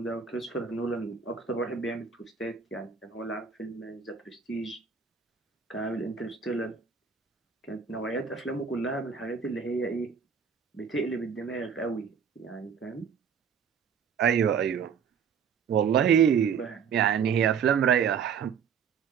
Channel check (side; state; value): left; quieter; 6.9 dB